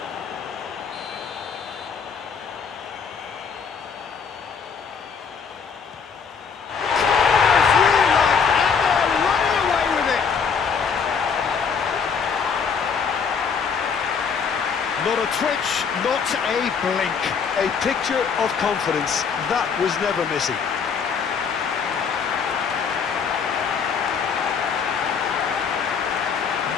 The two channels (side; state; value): right; quieter; 6.2 dB